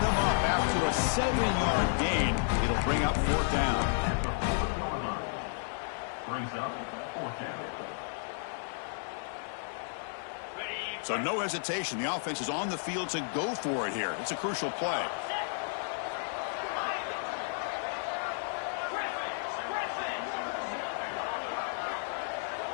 them up after a 7-yard gain. It'll bring up fourth down. Brings up fourth down. So no hesitation. The offense is on the field to go for it here. It's a crucial play.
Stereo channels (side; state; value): right; silent; 56 dB below the other